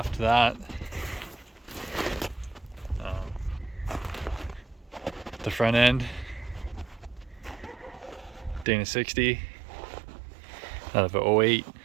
that. The front end, Dana 60 out of a 08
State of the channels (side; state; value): left; drops out; at 8.7 s